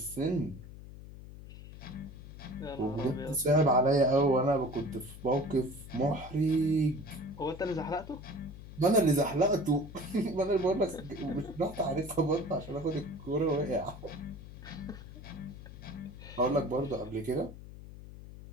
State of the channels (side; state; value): left; noise; hum, 14 dB below the sound